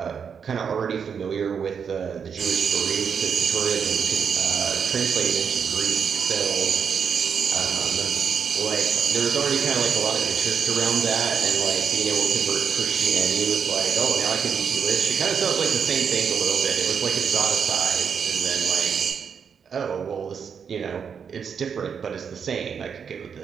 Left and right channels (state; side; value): quieter; left; 6.8 dB